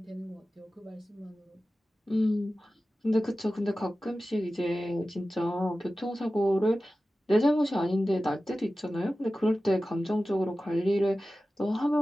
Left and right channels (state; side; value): normal; both; correlation 0.95